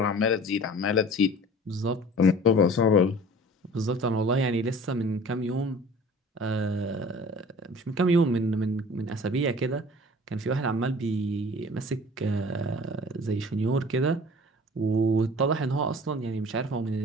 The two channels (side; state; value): both; normal; correlation 0.45